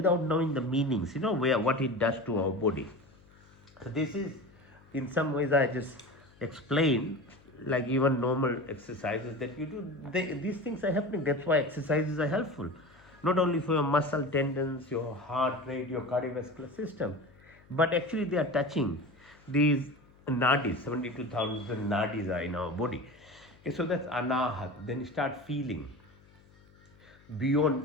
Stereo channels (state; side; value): noise; left; hum, 27 dB below the sound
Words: knowing the meanings, what it does to our body. So this is, in some ways, I just explain, like even normal exercises that you do. These things are happening. That's why exercises are helpful, not only for your muscle tendons, your heart rate, your cardiovascular system, but actually they are touching these nadis. 72,000 nadis are in our body. Okay, so that's anahat. Then you start feeling